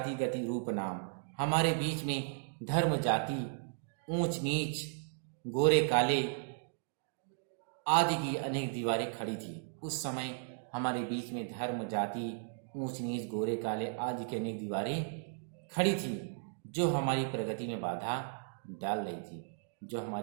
गति रूप नाम, हमारे बीच में धर्म जाति ऊंच नीच गोरे काले आदि की अनेक दीवारें खड़ी थी। उस समय हमारे बीच में धर्म जाति ऊंच नीच गोरे काले आदि की अनेक दीवारें खड़ी थी, जो हमारी प्रगति में बाधा डाल रही थी, जो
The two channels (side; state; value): left; silent; digital silence